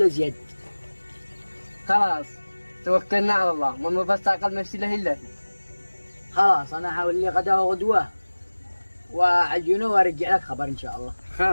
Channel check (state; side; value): inverted; both; correlation -1.00